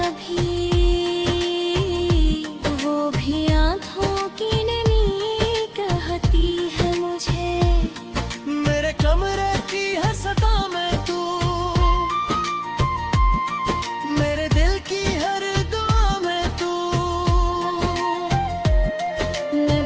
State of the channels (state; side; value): identical; both; correlation 1.00